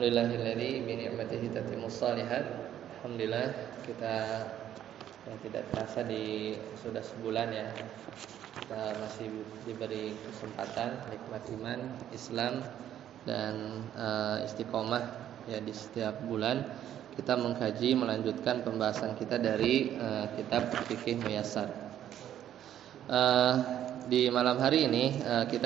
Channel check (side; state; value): left; quieter; 11.0 dB